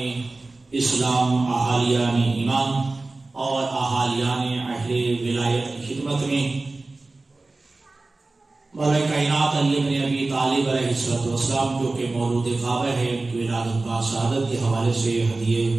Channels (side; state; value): left; quieter; 3.3 dB